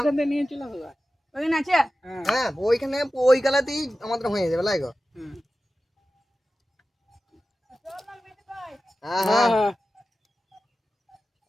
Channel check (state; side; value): normal; both; correlation 0.94